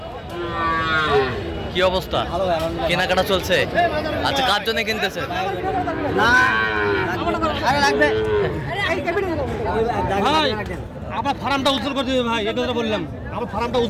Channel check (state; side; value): identical; both; correlation 1.00